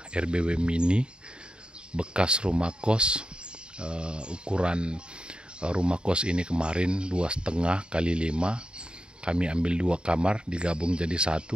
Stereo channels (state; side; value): late; left; 0.050 ms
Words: RBW mini bekas rumah kos. Ukuran rumah kos ini kemarin 2,5 x 5. Kami ambil 2 kamar digabung jadi